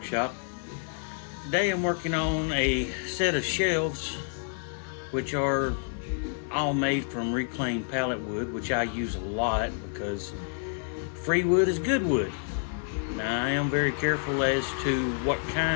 Today I'm working on a set of shelves which are all made from reclaimed pallet wood, which I use a lot because free wood is good wood. Now I am very careful as to what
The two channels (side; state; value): right; silent; digital silence